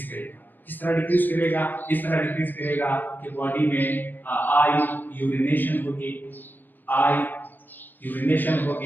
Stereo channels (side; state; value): right; late; 0.091 ms